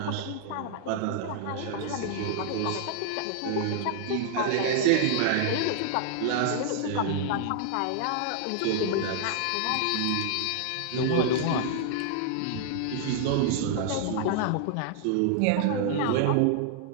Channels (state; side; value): different; both; correlation 0.00